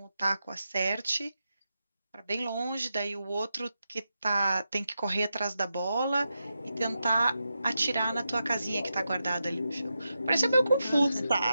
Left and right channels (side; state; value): both; inverted; correlation -0.88